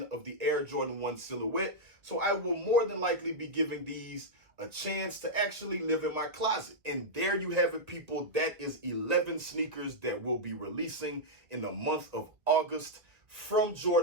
of the Air Jordan 1 silhouette, so I will more than likely be giving these a chance to actually live in my closet. And there you have it, people. That is 11 sneakers that will be releasing in the month of August from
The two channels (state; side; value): late; left; 1.6 ms